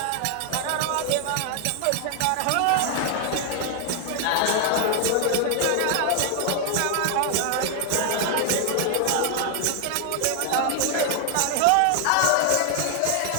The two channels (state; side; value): different; both; correlation 0.00